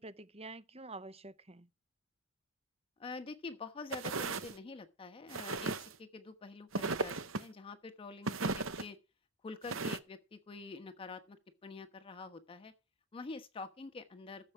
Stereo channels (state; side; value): normal; both; correlation 0.06